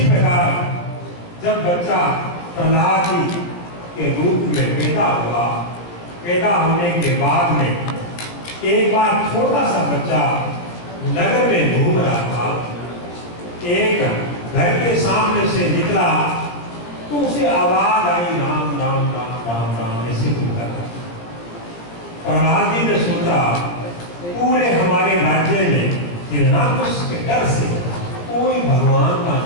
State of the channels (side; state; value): right; late; 17 ms